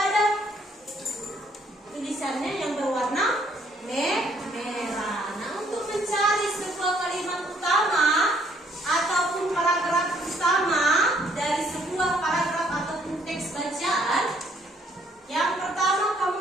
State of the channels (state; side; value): normal; both; correlation 0.66